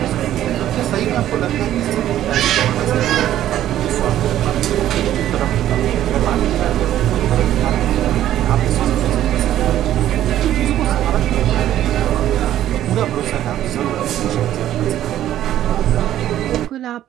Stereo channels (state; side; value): quieter; left; 12.3 dB